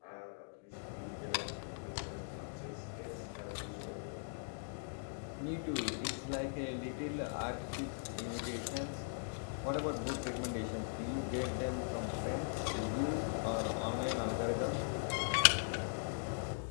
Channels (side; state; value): right; silent; digital silence